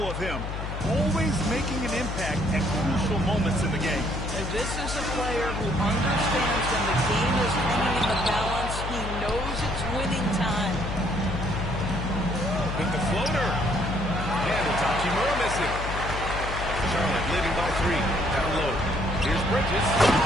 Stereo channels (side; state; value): left; noise; hum, 5 dB below the sound